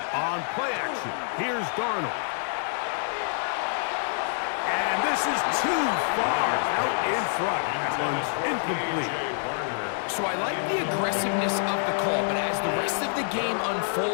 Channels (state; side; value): silent; right; digital silence